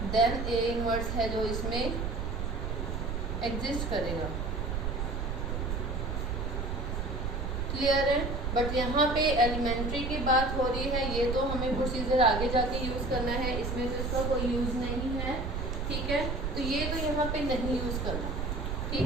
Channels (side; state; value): right; noise; rumble, 2 dB below the sound